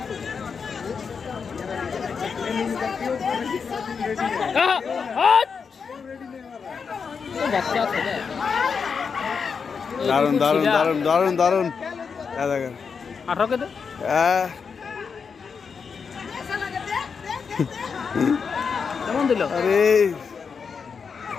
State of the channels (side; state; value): right; quieter; 5.8 dB